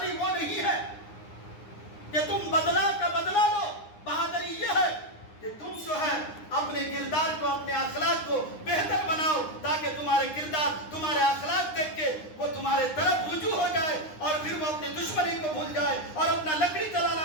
وہ نہیں ہے کہ تم بدلہ کا بدلہ لو، بہادری یہ ہے کہ تم جو ہے اپنے کردار کو، اپنے اخلاق کو بہتر بناؤ، تاکہ تمہارے کردار، تمہارے اخلاق دیکھ کے وہ تمہارے طرف رجوع ہو جائے، اور پھر وہ اپنی دشمنی کو بھول جائے، اور اپنا لکڑی چلانا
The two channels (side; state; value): right; late; 9.8 ms